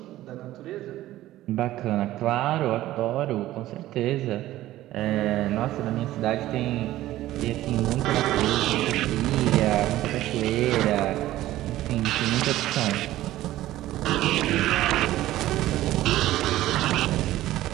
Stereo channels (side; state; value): left; quieter; 15.0 dB